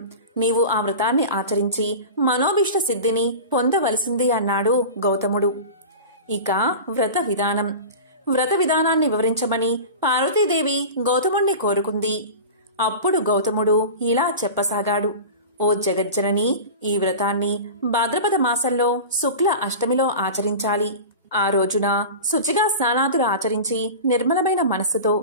నీవు ఆ వ్రతాన్ని ఆచరించి మనోభీష్ట సిద్ధిని పొందవలసింది అన్నాడు గౌతముడు. ఇక వ్రత విధానాన్ని వివరించమని పార్వతీదేవి గౌతముణ్ణి కోరుకుంది. అప్పుడు గౌతముడు ఇలా చెప్పసాగాడు: ఓ జగజ్జనని, ఈ వ్రతాన్ని భాద్రపద మాసంలో శుక్ల అష్టమిలో ఆచరించాలి. ఆ రోజున శుచిగా స్నానాదులు ఆచరించి నిర్మలమైన మనస్సుతో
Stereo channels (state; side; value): inverted; both; correlation -0.31